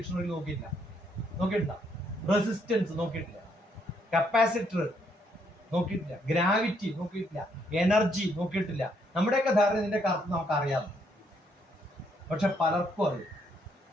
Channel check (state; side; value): normal; both; correlation 0.72